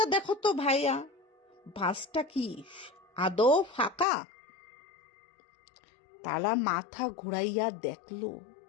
দেখো তো ভাইয়া, বাসটা কি আদৌ ফাঁকা। তারা মাথা ঘুরাইয়া দেখলো,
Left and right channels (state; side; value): drops out; right; at 4.0 s